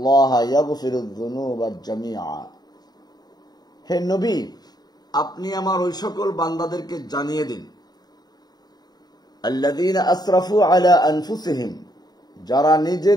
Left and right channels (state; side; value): late; right; 0.20 ms